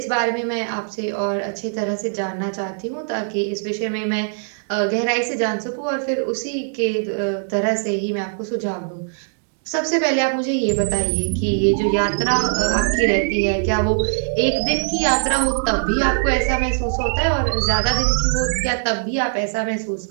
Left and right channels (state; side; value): silent; left; digital silence